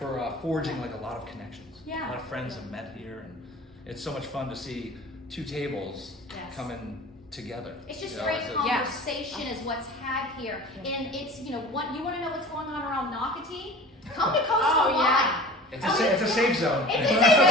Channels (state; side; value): normal; both; correlation 0.40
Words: forging like a lot of connections. Yeah. A lot of friends have met here, and it's so much fun to see two tables coming together. It's just great conversation is what's had here. And it's, what you want to know what's going on around Nocatee? Come to Coastal Wine. It's a safe zone. It's a safe